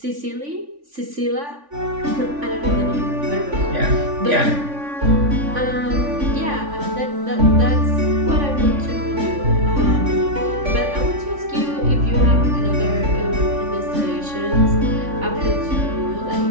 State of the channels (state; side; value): late; left; 3.5 ms